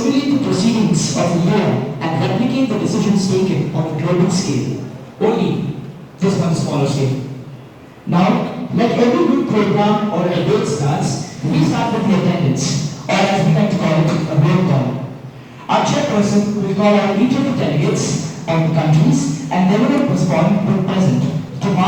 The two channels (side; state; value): both; identical; correlation 1.00